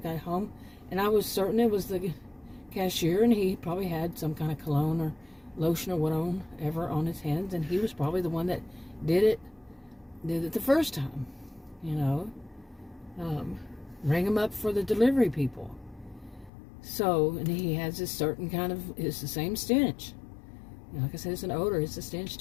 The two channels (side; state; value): right; drops out; at 16.5 s